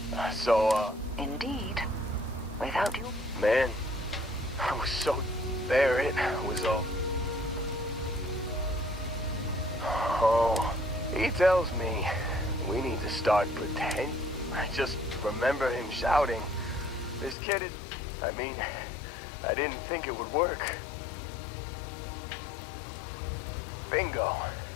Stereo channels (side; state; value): right; drops out; at 17.4 s